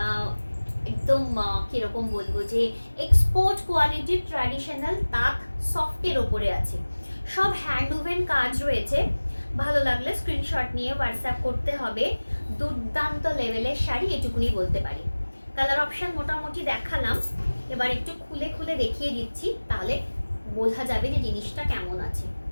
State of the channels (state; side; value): inverted; both; correlation -1.00